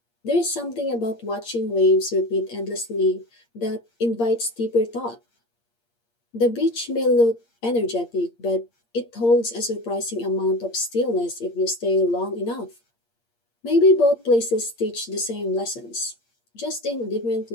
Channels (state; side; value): late; right; 8.6 ms